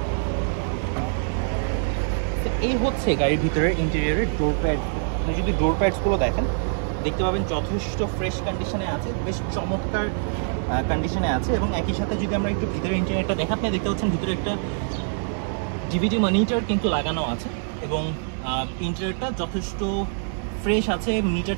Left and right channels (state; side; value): silent; left; digital silence